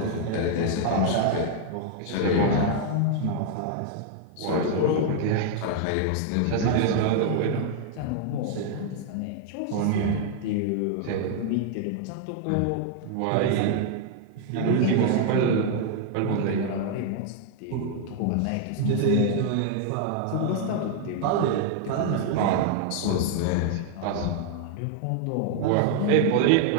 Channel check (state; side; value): different; both; correlation 0.00